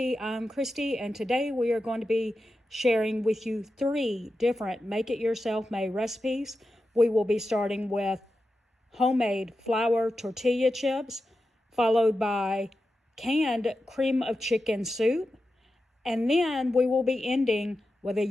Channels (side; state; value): both; normal; correlation 0.91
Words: I'm Christy, and today we are going to be sharing with you 3 different make-it-yourself-made recipes. We will be starting with homemade flour tortilla chips, followed by canned cream of chicken soup, and then we will be ending with a